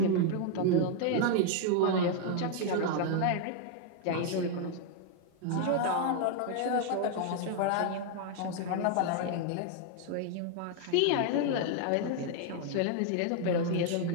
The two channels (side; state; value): both; different; correlation 0.00